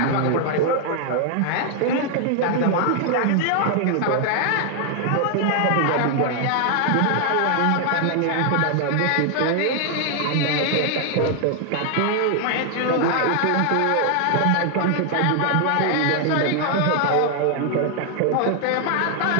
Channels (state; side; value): different; both; correlation 0.00